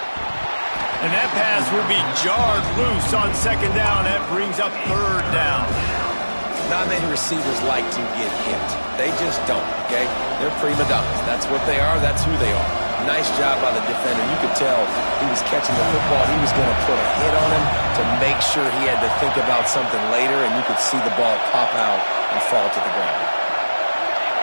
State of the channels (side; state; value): both; inverted; correlation -1.00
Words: And that pass will be jarred loose on 2nd down. That brings up 3rd down. Not many receivers like to get hit. They just don't, okay? They're prima donnas. That's what they are. That's who they are. Nice job by the defender. You could tell he was catching the football. He was going to put a hit on him to make sure he had to think about something later, and you could see the ball pop out and fall to the ground.